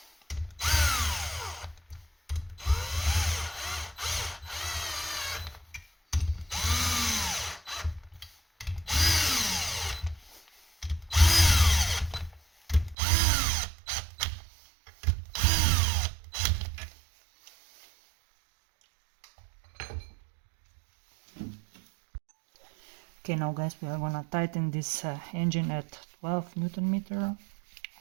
Okay, now guys, we are gonna tighten this engine at 12 Newton meter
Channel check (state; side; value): drops out; left; at 13.0 s